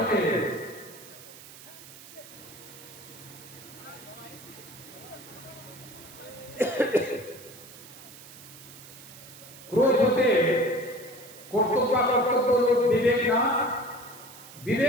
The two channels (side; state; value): right; noise; hiss, 18 dB below the sound